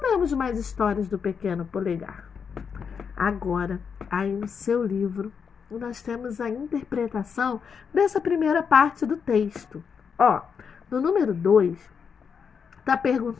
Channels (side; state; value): right; quieter; 6.4 dB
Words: temos mais histórias do pequeno polegar? Agora, aí no seu livro, nós temos a interpretação dessa primeira parte do texto. No número 2, está